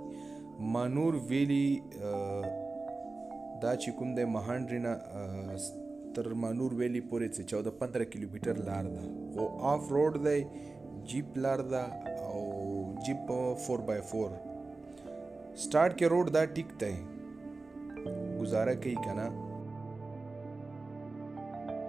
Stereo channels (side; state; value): left; quieter; 3.5 dB